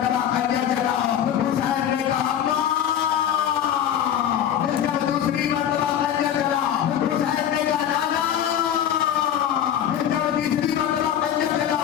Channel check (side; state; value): right; quieter; 9.9 dB